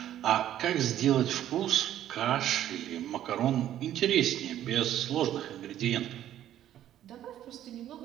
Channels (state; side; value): quieter; left; 11.8 dB